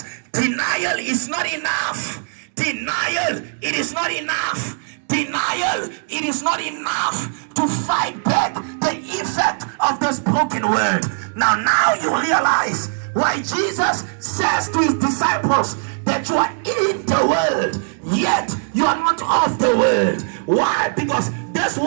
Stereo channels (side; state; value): left; silent; digital silence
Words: Denial is not enough. Denial, it is not enough. Denial, it is not enough to fight back the effect of this broken world. Now you realize why Jesus says to his disciples that you are in the world, yet you are not of the world. Why? Because this